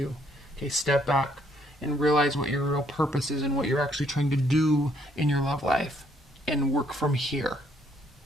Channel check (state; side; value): normal; both; correlation 0.68